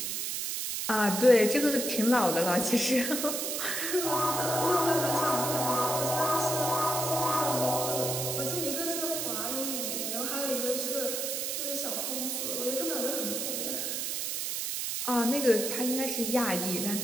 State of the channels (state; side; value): noise; right; hiss, 2 dB below the sound